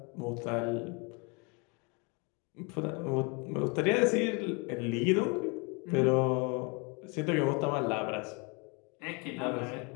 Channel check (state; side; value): quieter; right; 31.5 dB